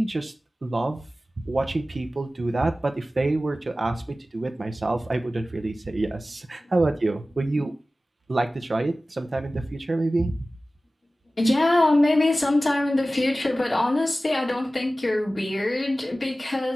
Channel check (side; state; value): both; normal; correlation 0.96